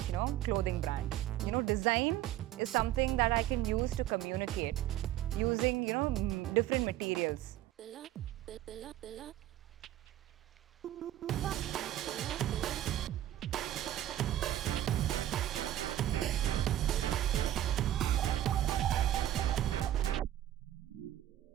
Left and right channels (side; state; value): left; quieter; 13.0 dB